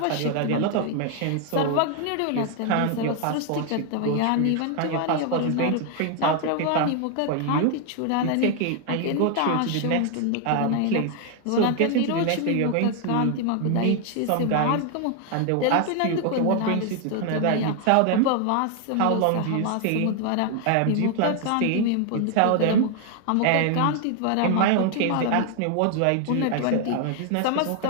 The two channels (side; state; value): both; different; correlation 0.00